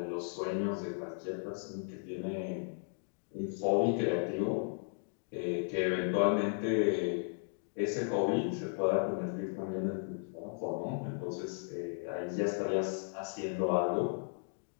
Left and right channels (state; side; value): silent; right; digital silence